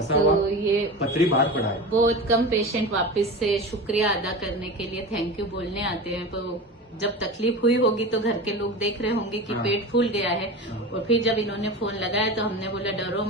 हुआ ये पथरी बाहर पड़ा है। बहुत कम पेशेंट वापस से शुक्रिया अदा करने के लिए थैंक यू बोलने आते हैं। तो जब तकलीफ हुई होगी तो घर के लोग देख रहे होंगे कि हाँ। पेट फूल गया है। हाँ। और फिर जब इन्होंने फोन लगाया तो हमने बोला डरो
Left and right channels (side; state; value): both; normal; correlation 0.29